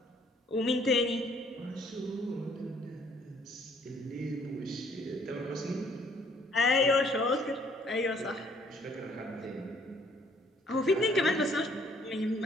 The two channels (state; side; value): normal; both; correlation 0.63